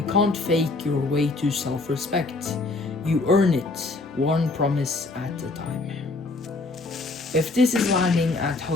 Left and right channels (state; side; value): quieter; right; 3.4 dB